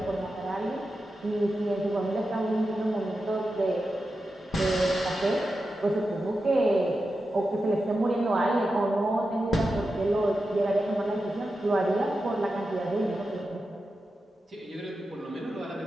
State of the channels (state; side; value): normal; both; correlation 0.90